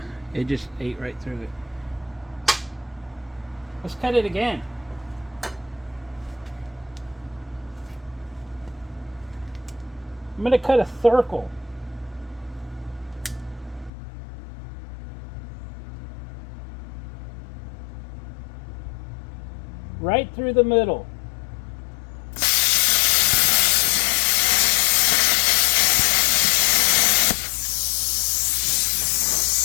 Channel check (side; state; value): right; drops out; at 13.9 s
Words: It just ate right through it. Let's cut it again. I'm going to cut a circle. Right through the middle.